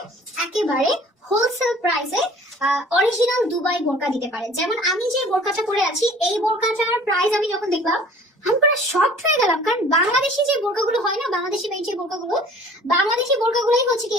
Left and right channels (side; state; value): both; normal; correlation 0.49